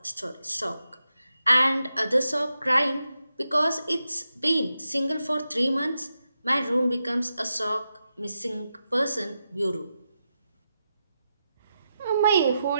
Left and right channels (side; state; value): both; inverted; correlation -0.88